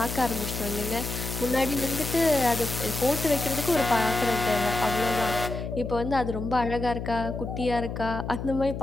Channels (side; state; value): left; noise; hum, 6 dB below the sound